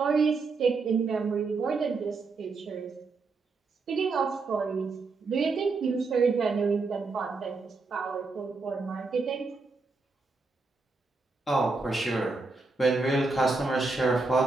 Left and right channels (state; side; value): quieter; left; 3.9 dB